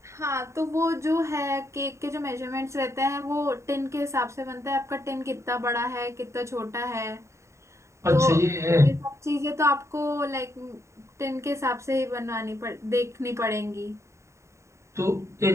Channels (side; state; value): left; late; 0.14 ms